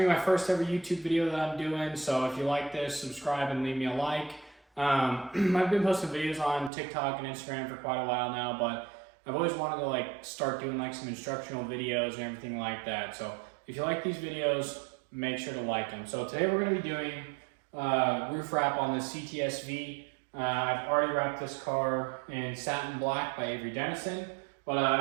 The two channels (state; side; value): drops out; left; at 6.7 s